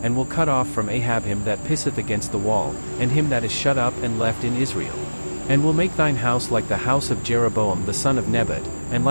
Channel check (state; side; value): inverted; both; correlation -1.00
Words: and will cut off from Ahab him that pisseth against the wall, and him that is shut up and left in Israel. And will make thine house like the house of Jeroboam the son of Nebat, and